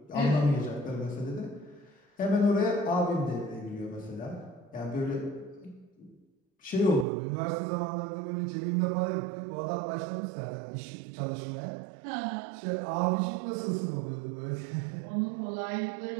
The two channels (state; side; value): drops out; left; at 7.1 s